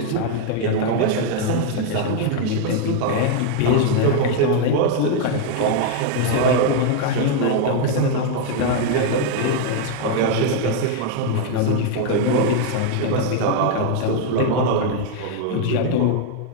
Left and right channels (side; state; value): both; different; correlation 0.00